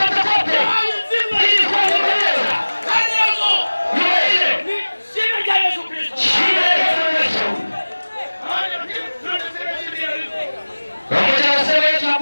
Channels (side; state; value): both; inverted; correlation -1.00